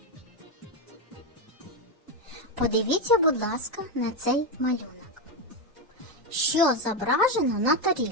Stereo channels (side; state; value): both; normal; correlation 0.08